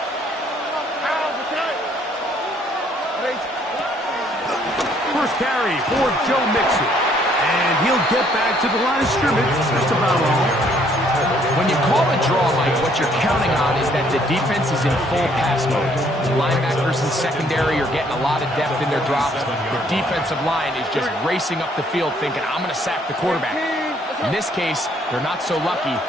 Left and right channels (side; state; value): both; normal; correlation 0.65